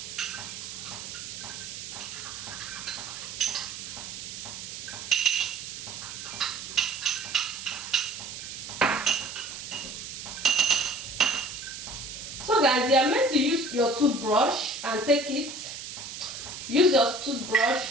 So guys, you are meant to use your toothbrush and take it. Use your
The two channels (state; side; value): noise; right; hiss, 9 dB below the sound